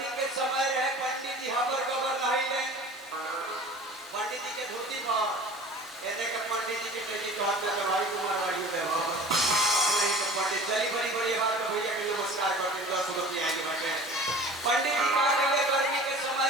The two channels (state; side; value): normal; both; correlation 0.42